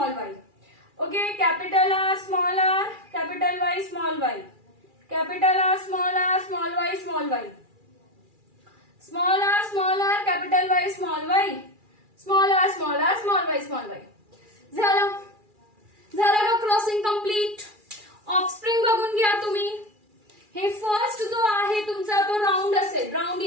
Y. Okay, capital R, capital Y, small Y, capital R, small Y, small Y, small R, capital Y, small Y, small R, small Y, small Y. झालं का crossing complete? Offspring बघून घ्या तुम्ही. हे first जो आहे तुमचा तो राऊंड असेल, राऊंड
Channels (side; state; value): left; late; 2.4 ms